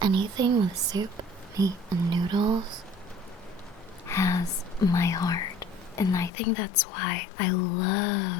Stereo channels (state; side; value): drops out; right; at 6.3 s